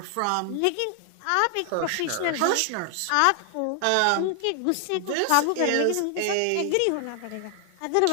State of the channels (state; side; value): different; both; correlation 0.00